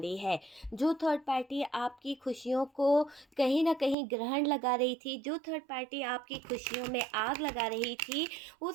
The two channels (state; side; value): drops out; left; at 4.0 s